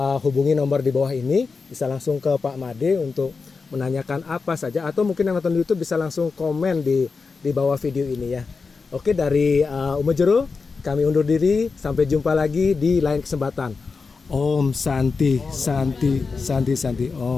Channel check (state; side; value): quieter; right; 4.7 dB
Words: hubungi nomor di bawah ini, bisa langsung ke Pak Made untuk menanyakan apa saja, atau mungkin yang nonton di YouTube bisa langsung komen di bawah video ini ya. Oke, dari Umajero kami undur diri, sampai jumpa lagi di lain kesempatan. Om Santi